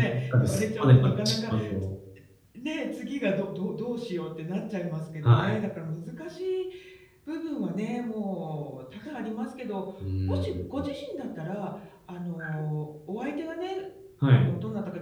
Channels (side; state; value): both; identical; correlation 1.00